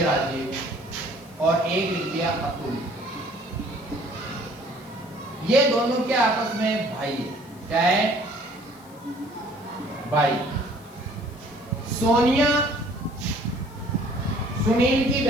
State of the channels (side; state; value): left; noise; hiss, 26 dB below the sound